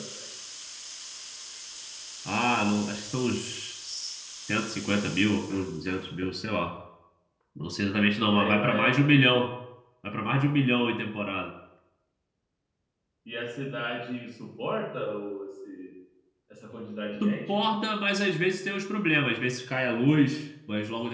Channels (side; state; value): both; identical; correlation 1.00